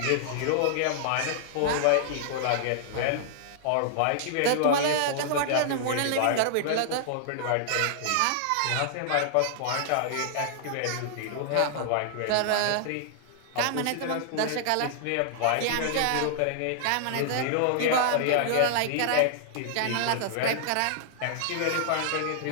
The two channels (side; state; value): both; different; correlation -0.01